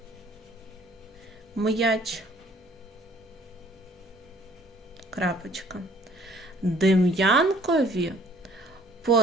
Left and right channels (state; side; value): normal; both; correlation 0.57